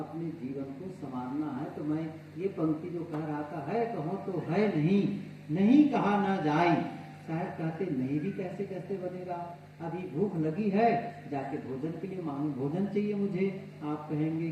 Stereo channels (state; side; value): identical; both; correlation 1.00